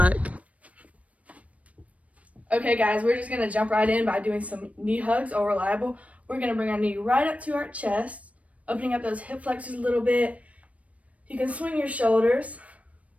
Okay guys, we're just gonna jump right in by doing some knee hugs or reliable. We're gonna bring our knee right up to our chest, opening up those hip flexors a little bit. You can swing your shoulders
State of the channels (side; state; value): left; late; 0.066 ms